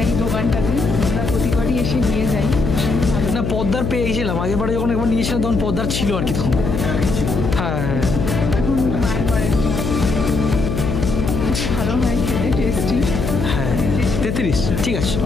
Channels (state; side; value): noise; left; hum, 2 dB below the sound